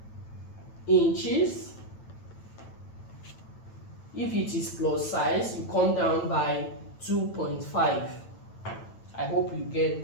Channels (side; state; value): right; late; 9.0 ms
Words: inches If it is plus size, you come down by 2.5. I hope you get